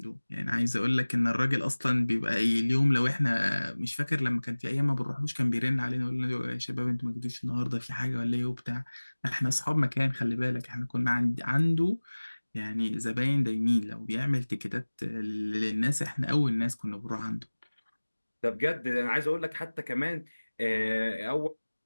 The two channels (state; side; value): inverted; both; correlation -1.00